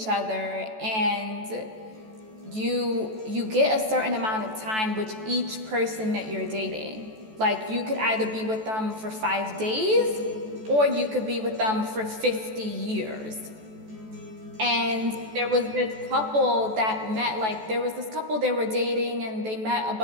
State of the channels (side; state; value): left; late; 14 ms